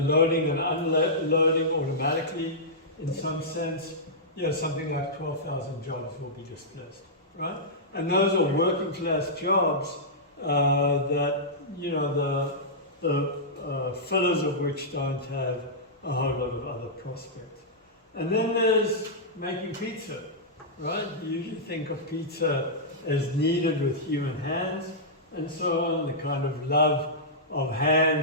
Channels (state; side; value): normal; both; correlation -0.13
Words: loading and unloading automatically, in some sense, something like 12,000 jobs will be displaced, right? And those are working class jobs that, the fillers of which don't have a whole lot of other prospects. And then there's making pizza, right? You usually think of pizza as kneaded with human hands and so on, the kind of love of